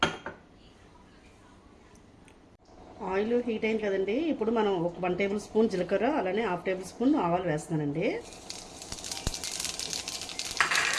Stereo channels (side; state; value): both; identical; correlation 1.00